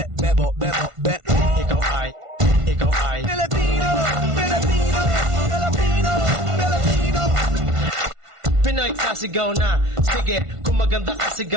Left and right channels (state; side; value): late; left; 1.5 ms